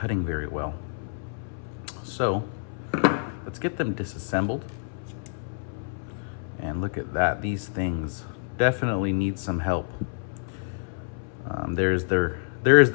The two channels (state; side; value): silent; right; 60 dB below the other